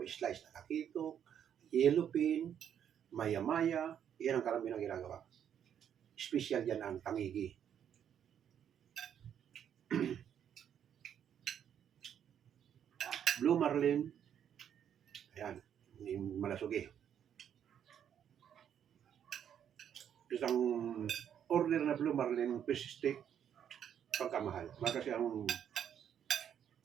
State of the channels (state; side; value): quieter; left; 9.1 dB